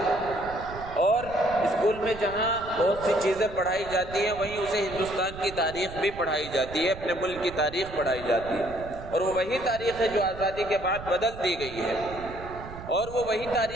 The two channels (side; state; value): right; noise; rumble, 13 dB below the sound